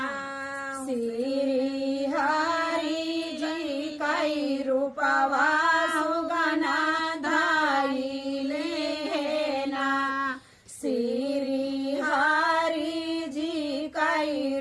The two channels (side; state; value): both; identical; correlation 1.00